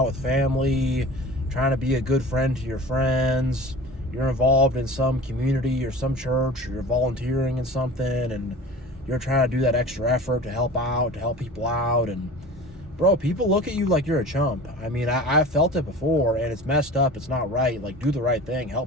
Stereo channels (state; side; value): normal; both; correlation 0.38